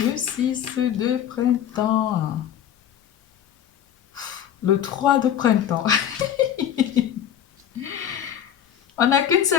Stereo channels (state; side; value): quieter; right; 9.8 dB